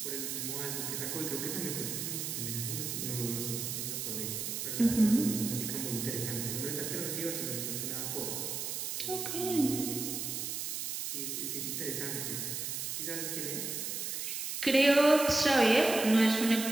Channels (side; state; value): right; noise; hiss, 3 dB below the sound